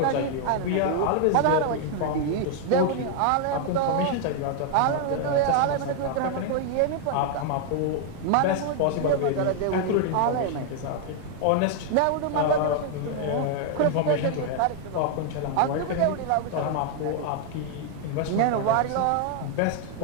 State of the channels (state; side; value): different; both; correlation 0.00